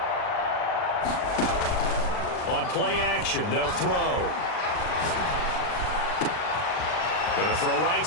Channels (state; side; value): late; right; 39 ms